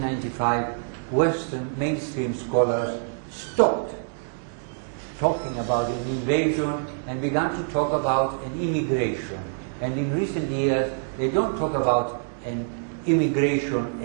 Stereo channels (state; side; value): silent; left; digital silence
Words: Western mainstream scholars stopped talking about an invasion and began to talk about an immigration. And in recent years, they don't talk about an immigration